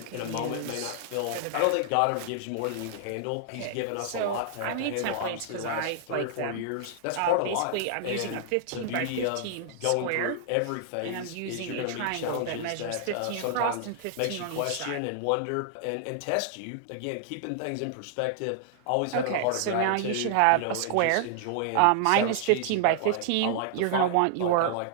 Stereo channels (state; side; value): different; both; correlation 0.00